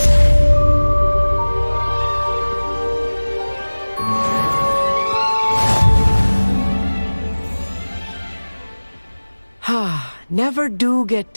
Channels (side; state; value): both; inverted; correlation -1.00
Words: Never do get